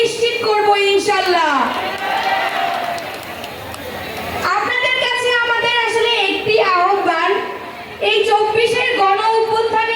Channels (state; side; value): identical; both; correlation 1.00